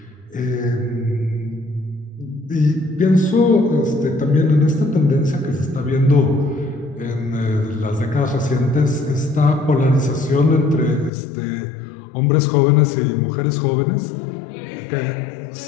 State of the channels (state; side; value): drops out; right; at 11.1 s